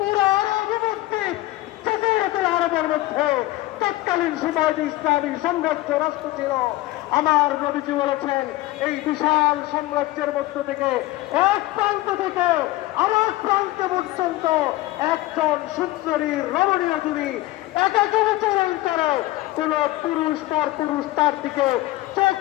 আরব উপস্থিত জাজিরাতুল আরবের মধ্যে তৎকালীন সময় ইসলামী সাম্রাজ্য রাষ্ট্র ছিল। আমার নবীজি বলেছেন এই বিশাল সাম্রাজ্যের মধ্য থেকে এক প্রান্ত থেকে আমার প্রান্ত পর্যন্ত একজন সুন্দরী রমণীয় জুড়ি একাকে বিচরণ করে কোন পুরুষ তার দিকে চোখ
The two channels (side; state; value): right; quieter; 18.0 dB